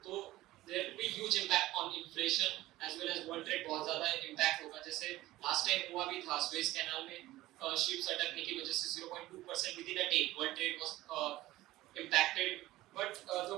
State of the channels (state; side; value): quieter; left; 16.8 dB